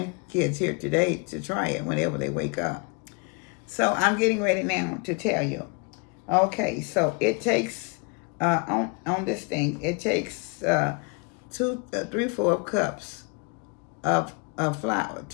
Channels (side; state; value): right; quieter; 32.6 dB